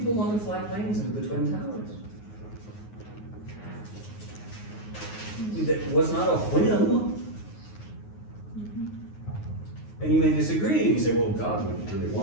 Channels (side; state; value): right; late; 9.5 ms